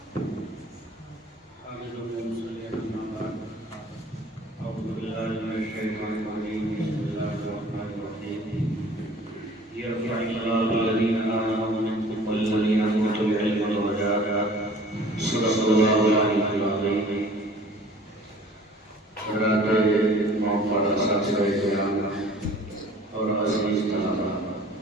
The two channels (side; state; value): both; normal; correlation 0.49